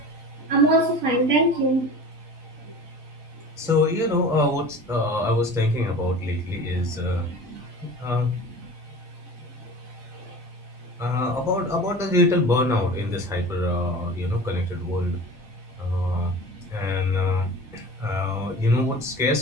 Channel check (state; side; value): normal; both; correlation 0.37